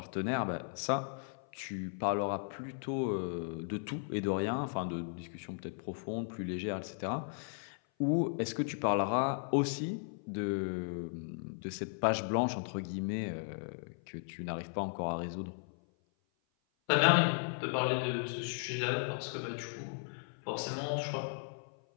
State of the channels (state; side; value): silent; right; 54 dB below the other